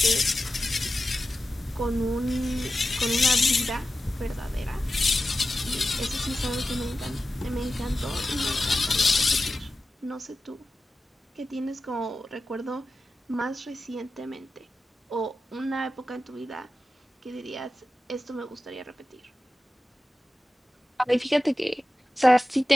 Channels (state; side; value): normal; both; correlation 0.93